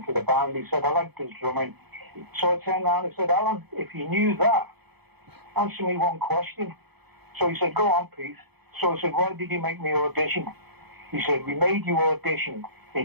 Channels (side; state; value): left; late; 0.98 ms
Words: the band. He said, I liked his drumming. So I turned around and said, Alan, if you knew that, answer me one question. So he said, go on, Pete. So I said, why did you make me audition? He said, we made you audition